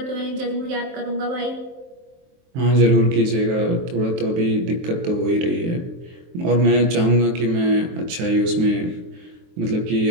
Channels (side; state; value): left; late; 23 ms